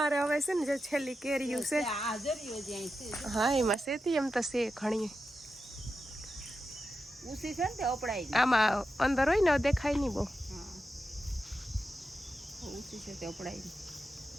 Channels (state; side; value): normal; both; correlation 0.90